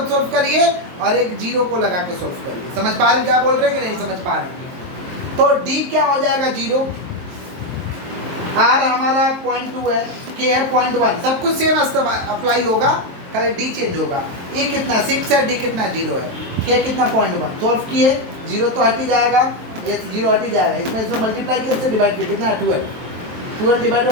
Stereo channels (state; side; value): late; left; 23 ms